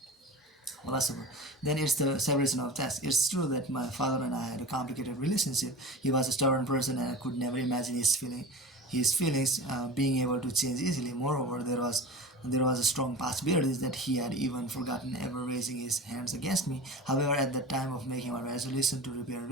Philosopher, then it's the separation of tasks. It's true that my father and I had a complicated relationship. He was a stubborn person, and I could never imagine his feelings being able to change easily. Moreover, there was a strong possibility that he had even forgotten ever raising his hands against me. However, at the time of making my resolution to repair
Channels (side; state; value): both; normal; correlation 0.33